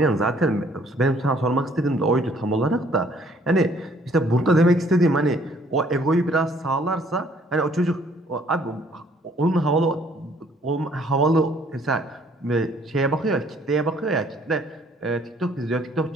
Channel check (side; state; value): both; normal; correlation 0.61